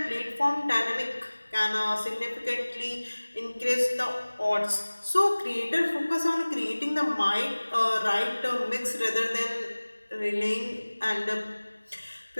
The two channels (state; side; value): inverted; both; correlation -1.00